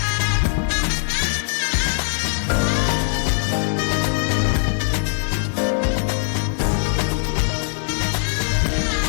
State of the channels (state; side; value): silent; right; 58 dB below the other